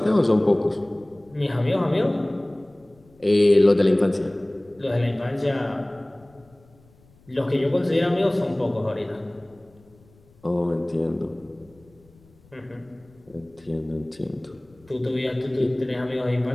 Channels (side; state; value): left; noise; rumble, 29 dB below the sound